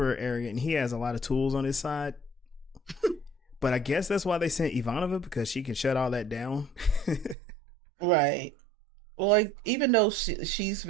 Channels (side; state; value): left; drops out; at 7.4 s